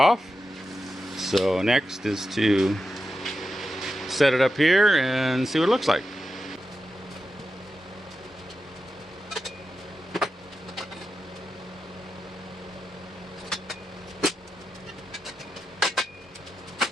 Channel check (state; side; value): normal; both; correlation 0.90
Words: So next is to set it up here and see what it looks like.